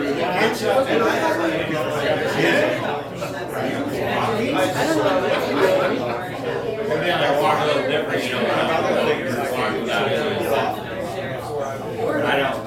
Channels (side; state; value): both; identical; correlation 1.00